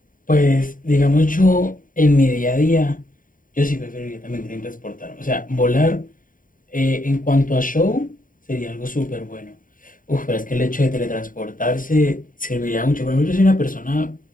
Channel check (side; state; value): right; late; 0.39 ms